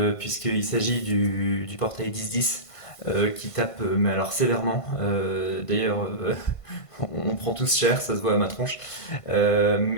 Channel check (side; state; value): right; late; 1.5 ms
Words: puisqu'il s'agit du portail 1010 qui tape, mais alors sévèrement. D'ailleurs, on prend tous cher, ça se voit à ma tronche.